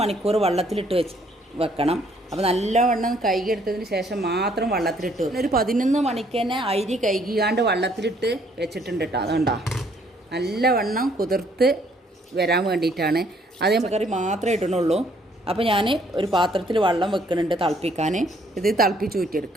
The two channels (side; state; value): both; normal; correlation 0.65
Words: മണിക്കൂർ വെള്ളത്തിലിട്ട് വെക്കണം. അപ്പോൾ നല്ലവണ്ണം കഴുകി എടുത്തതിന് ശേഷം മാത്രം വെള്ളത്തിലിട്ട് വെക്കും. ഒരു 11 മണിക്ക് തന്നെ അരി കഴുകിയാണ്ട് വെള്ളത്തിലിട്ട് വെച്ചിട്ടുണ്ട് കേട്ടോ. അതുകൊണ്ടാ നല്ലവണ്ണം കുതിർത്ത് വരാൻ വേണ്ടിയിട്ടാണ്. അതേ കറി മാത്രമേ ഇടണുള്ളൂ. അപ്പോൾ ഞാൻ ഒരു പാത്രത്തിൽ വെള്ളം വെക്കുന്നുണ്ട് തിളപ്പിക്കാൻ. ഇത് തിളപ്പിച്ച്